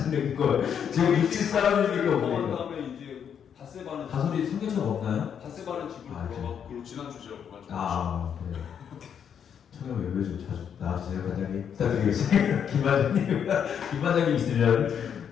걸 지금 육지 싸움이니까 그런 뭡니까? 다음에 이제 바세바는 다솔이 성경책 없나요? 바세바는 집으로 아, 돌아가고 그리고 지난 주제로 가지고 아, 그래요. 청년 외배 좀 자주 나와주세요, 관장님. 부탁드리겠습니다. 김반장님 있으면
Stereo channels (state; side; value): quieter; right; 8.1 dB